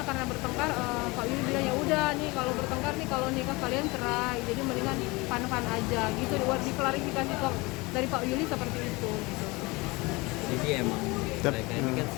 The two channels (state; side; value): quieter; right; 24.2 dB